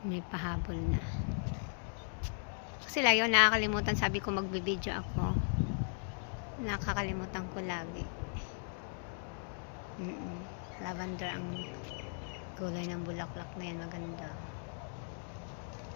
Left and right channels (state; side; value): silent; right; 53 dB below the other